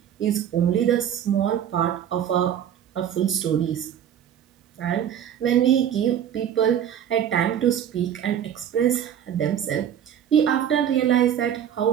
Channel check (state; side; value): quieter; left; 9.6 dB